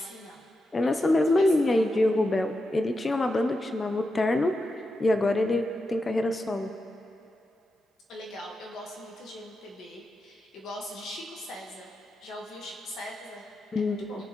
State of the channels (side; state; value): both; normal; correlation 0.88